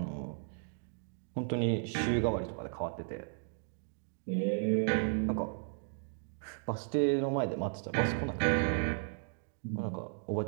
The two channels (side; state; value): left; silent; digital silence